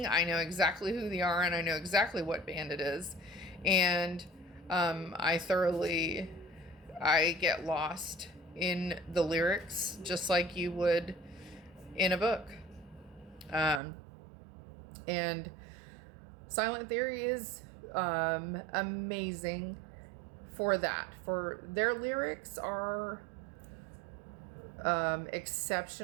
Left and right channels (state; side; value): drops out; left; at 13.8 s